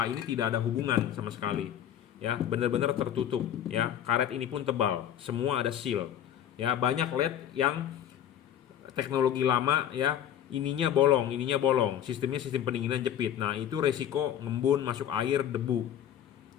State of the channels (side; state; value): right; quieter; 10.1 dB